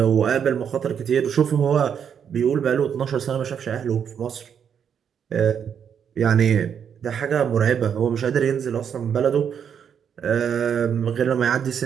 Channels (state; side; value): quieter; left; 7.9 dB